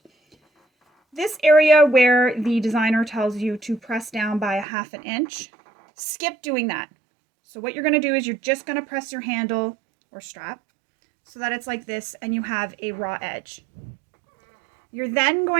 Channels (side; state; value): left; drops out; at 4.7 s